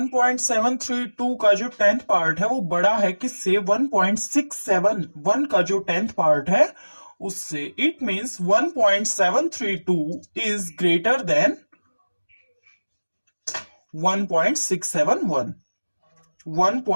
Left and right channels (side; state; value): both; inverted; correlation -1.00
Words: का जो 10th पार्ट है वो बड़ा है किससे? 1.671 का जो 10th पार्ट है उससे. It means 1.732 is greater then 1.671.